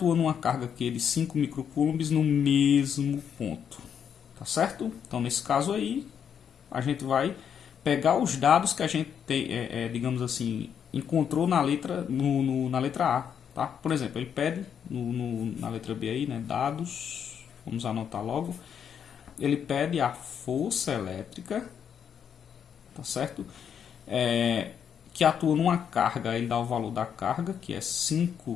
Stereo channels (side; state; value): right; quieter; 8.0 dB